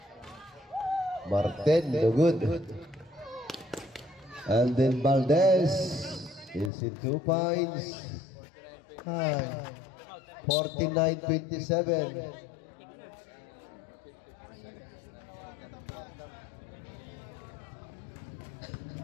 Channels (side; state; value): right; drops out; at 6.7 s